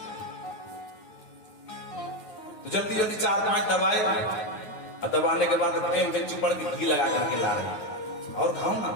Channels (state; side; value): late; right; 9.4 ms